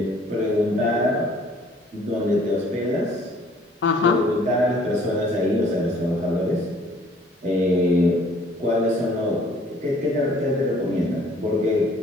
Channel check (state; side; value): normal; both; correlation 0.57